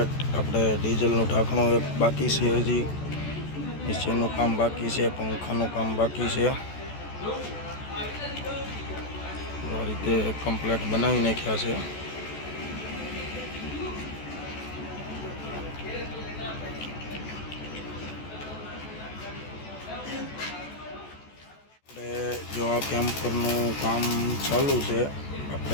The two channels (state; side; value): late; right; 14 ms